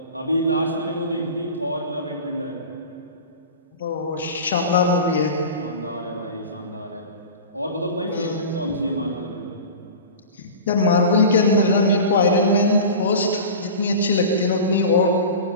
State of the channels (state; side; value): inverted; both; correlation -0.34